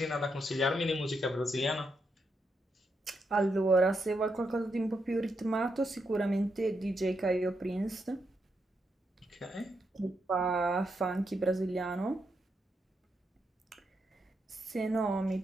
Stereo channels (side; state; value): both; normal; correlation 0.81